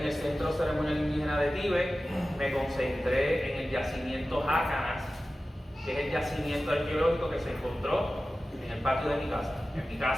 el Centro Ceremonial Indígena de Tíbet, me concentré en el yacimiento Jácanas, que es el yacimiento arqueológico que se encontró en el patio de mi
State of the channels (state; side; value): normal; both; correlation 0.95